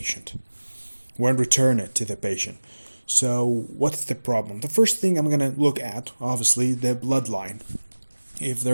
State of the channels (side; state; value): both; inverted; correlation -1.00